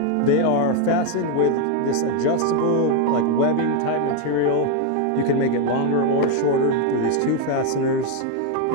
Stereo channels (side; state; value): both; different; correlation 0.01